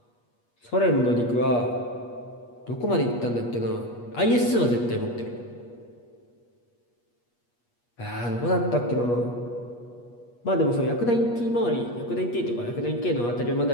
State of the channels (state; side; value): late; right; 8.4 ms